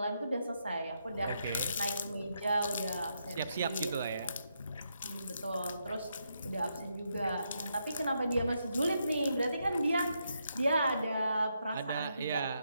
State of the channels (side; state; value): both; inverted; correlation -0.80